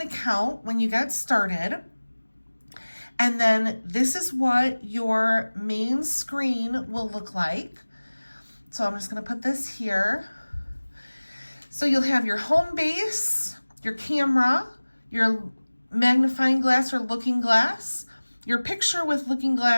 account when you get started. And then this is what your main screen will look like. So I'm just gonna put this here. So you'll have your home base, your camera, your magnifying glass or looking glass, your picture with looking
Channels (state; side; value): inverted; both; correlation -1.00